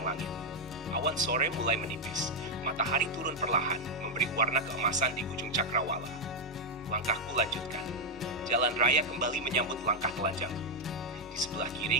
langit. Awan sore mulai menipis, matahari turun perlahan, memberi warna keemasan di ujung cakrawala. Langkahku lanjutkan. Jalan raya kembali menyambut langkah telanjangku. Di sebelah kiri,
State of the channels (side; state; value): both; normal; correlation 0.01